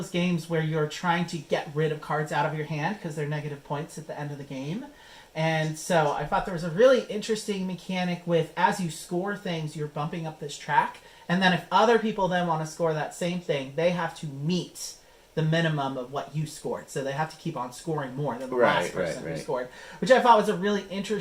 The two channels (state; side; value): identical; both; correlation 1.00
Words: games where you're trying to get rid of cards out of your hand because they're negative points at the end of the game. And so I thought there was a really interesting mechanic with, as you score things, you're bumping up this track. And then if other people then want to score that same thing, they have to meet the minimum of what you scored. So they have to keep on scoring more than the last person who scored. Which I thought was a really